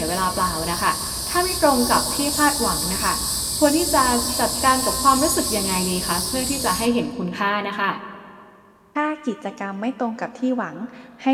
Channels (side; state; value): both; identical; correlation 1.00